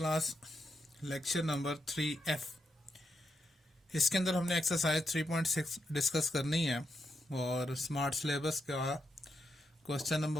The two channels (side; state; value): both; normal; correlation 0.83